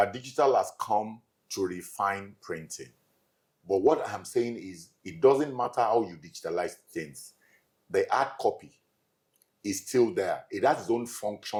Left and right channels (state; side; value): identical; both; correlation 1.00